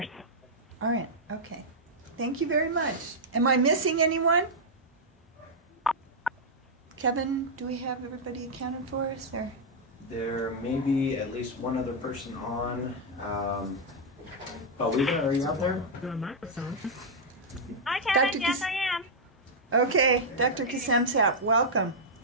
All right. Okay. Thank you very much. Am I missing anyone? Kevin, do we have everybody accounted for us? Or? There may be at least one other person on. Paulina, are you out there? Hi, Kevin. Yes, I am. Okay, Dr. Kasemsap, welcome.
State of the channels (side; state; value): both; normal; correlation -0.05